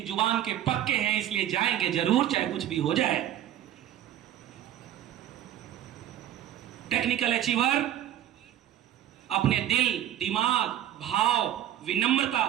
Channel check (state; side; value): quieter; left; 11.8 dB